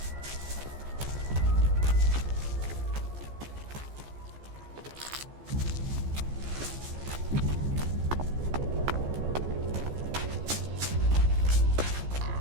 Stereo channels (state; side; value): late; left; 14 ms